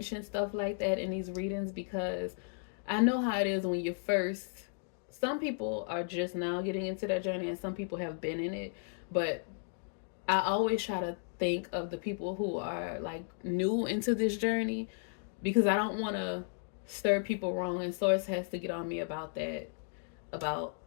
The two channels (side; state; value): right; silent; 55 dB below the other